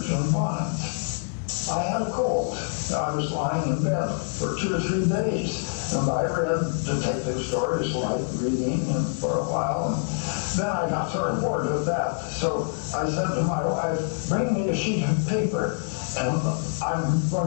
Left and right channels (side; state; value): right; silent; 61 dB below the other